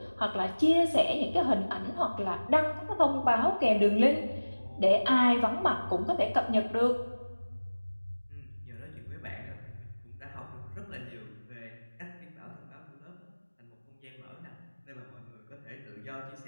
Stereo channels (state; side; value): inverted; both; correlation -1.00